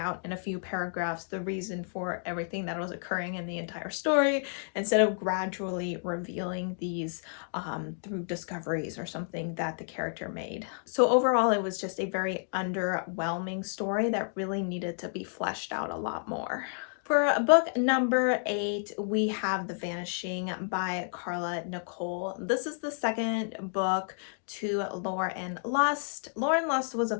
in a few paragraphs the reason for everything that was occurring in the entire story, instead of gradually revealing these through discoveries or something that the character made. So overall, it was just a very underwhelming story that really needed to be fleshed out a lot more. For book number 8, we have The Vanishing by Carla Nicole. This is the second book to Lore and Lust. Lore and Lust was a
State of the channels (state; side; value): silent; right; digital silence